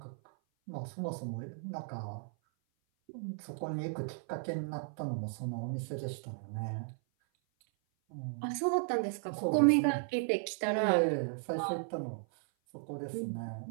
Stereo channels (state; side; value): silent; left; 54 dB below the other